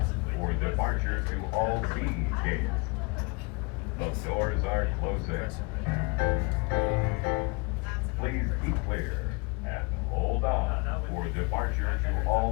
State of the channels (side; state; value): right; quieter; 29.4 dB